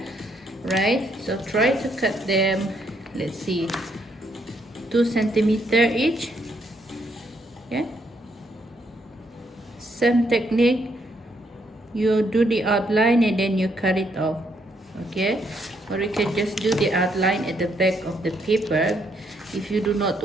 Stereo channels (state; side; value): normal; both; correlation 0.73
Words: right? So try to cut them, let's see, 2 centimeter each. Okay, same technique, you do the outline and then you cut it off. Okay, or you can just do the outline at the back of the paper if you do not